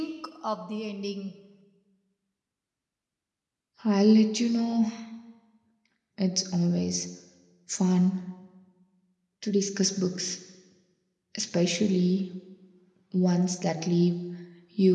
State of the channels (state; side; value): identical; both; correlation 1.00